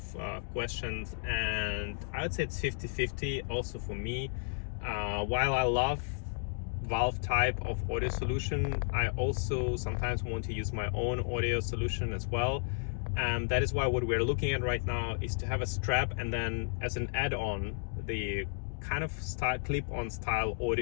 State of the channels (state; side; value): silent; right; digital silence